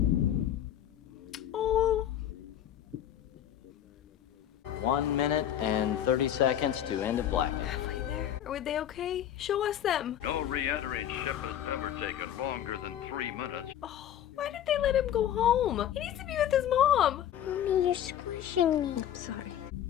Oh. 1 minute and 30 seconds to end of blackout. Halfway there. Are they okay? Show us them. No re-entering ship has ever taken longer than 3 minutes. Oh, why did they let him go home? He needs to be with his mom. Mommy, you're squishing me. I'm sorry.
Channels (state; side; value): quieter; right; 10.8 dB